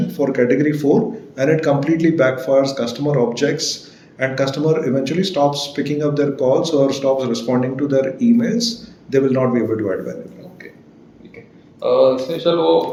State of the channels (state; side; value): identical; both; correlation 1.00